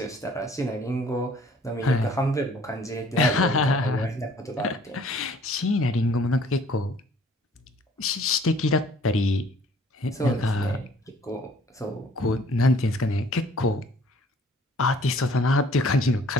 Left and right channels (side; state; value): both; normal; correlation 0.57